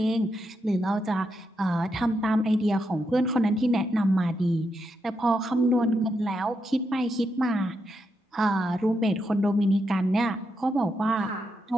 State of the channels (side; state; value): both; normal; correlation 0.83